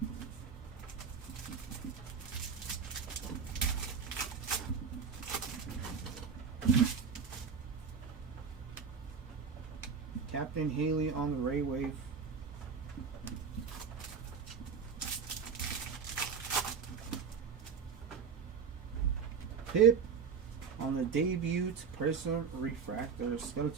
Captain Haley on the Ray Wave. Pip on the debut Prism refractor,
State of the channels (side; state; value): left; quieter; 6.2 dB